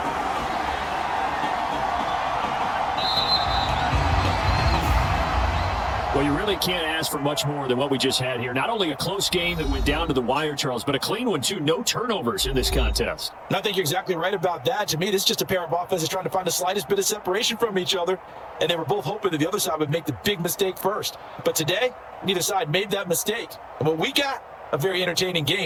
Well, you really can't ask for much more than what we just had here. Not only a close game that went down to the wire, Charles, but a clean one, too. No turnovers in this contest. And I think you're exactly right about that. To me, this is just a pair of offenses trying to find the slightest bit of separation from each other. And they were both hoping that the other side would make the big mistake first. But today, neither side made that mistake. And what we got, a very entertaining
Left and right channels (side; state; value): both; identical; correlation 1.00